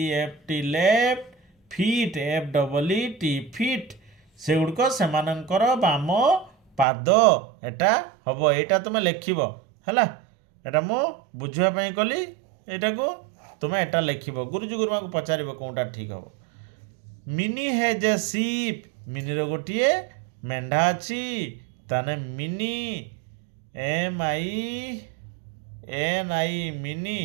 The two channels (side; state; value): left; drops out; at 6.9 s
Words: left feet FEET feet से गुड़क सेमानंकर बाम पाद एटा हम एटा तुम लिखब है एटा मु बुझापी कली एटा को तुम एटा लिखब गुरुजी गुरुमा को पचार कौटा ठीक हम मिनी हैज ए सीप मिनी रो गोटे मेंढा अच्छी ताने मिनी MINI मिनी